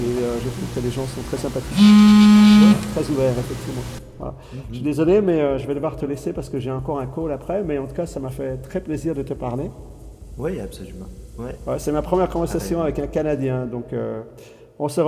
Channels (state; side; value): identical; both; correlation 1.00